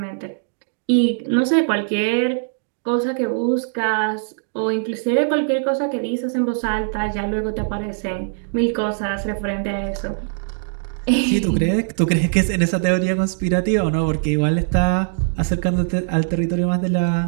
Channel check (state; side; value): silent; left; digital silence